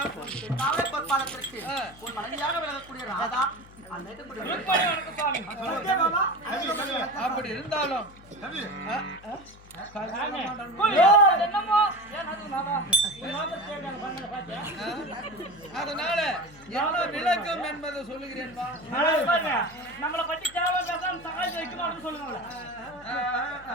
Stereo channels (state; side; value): noise; left; hum, 22 dB below the sound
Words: காவலை பொற்பாலத்திற்கு உன் மனைவியாக விளங்கக்கூடிய ராதா அப்படி இருந்தாலும் அதனால என்ன விளக்கம் என்பதை சொல்லுகிறேன். நம்மளை பற்றி தேவை சகாயம் வைக்கணும் சொல்லுங்க.